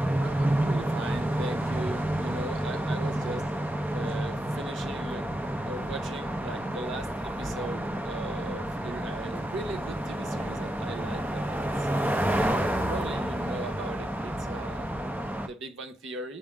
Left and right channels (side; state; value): both; normal; correlation 0.85